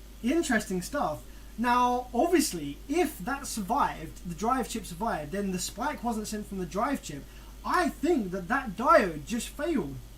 interesting stuff. Now, obviously, if that survived, the drive chip survived, then the spike wasn't sent from the drive chip. I think that diode just failed.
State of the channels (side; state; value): both; identical; correlation 1.00